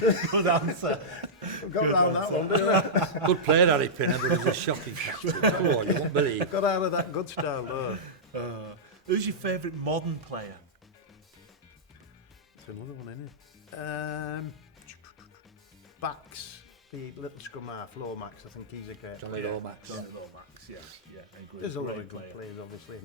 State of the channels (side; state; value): both; normal; correlation -0.12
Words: Good answer. I've got around that one, didn't I? Good player, Harry Pinner, but he was a shocking captain. Come on, you won't believe. Got out of that good style there. Who's your favourite modern player? It's another one, isn't it? Backs, the little scrum half, Lomax, I think he's a great Johnny Yeah, Lomax. Johnny Lomax. Yeah. Yeah. I agree. There's a lot Great of good player. players, obviously,